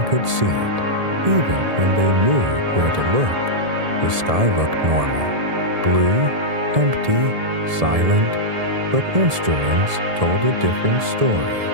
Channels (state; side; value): late; left; 1.7 ms